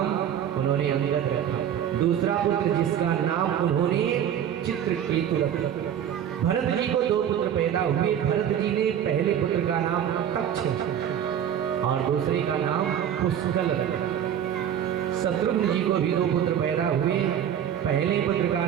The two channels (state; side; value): quieter; left; 9.6 dB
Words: उन्होंने अंगद रखा। दूसरा पुत्र जिसका नाम उन्होंने चित्रकेतु रखा। भरत जी को 2 पुत्र पैदा हुए। भरत जी ने पहले पुत्र का नाम तक्ष और दूसरे का नाम पुष्कल रखा। शत्रुघ्न जी को भी 2 पुत्र पैदा हुए। पहले पुत्र का